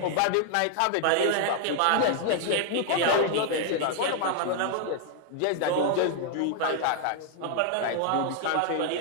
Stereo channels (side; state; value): both; different; correlation 0.00